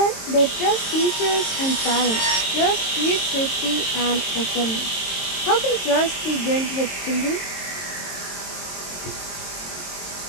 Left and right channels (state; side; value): late; right; 22 ms